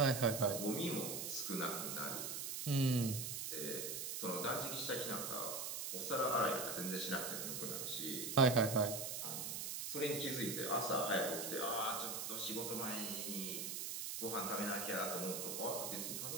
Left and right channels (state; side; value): noise; right; hiss, 3 dB below the sound